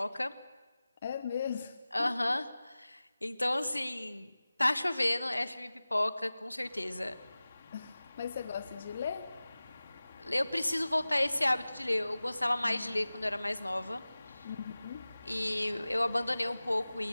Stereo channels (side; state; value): both; inverted; correlation -0.97